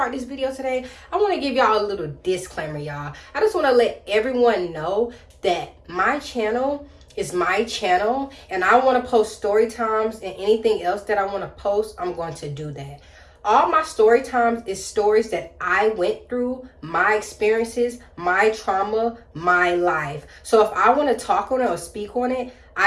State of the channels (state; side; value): identical; both; correlation 1.00